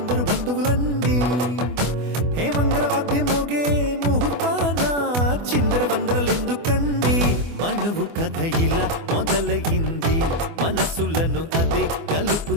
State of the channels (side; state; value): left; late; 24 ms